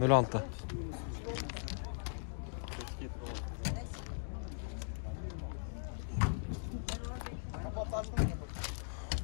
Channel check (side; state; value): right; silent; digital silence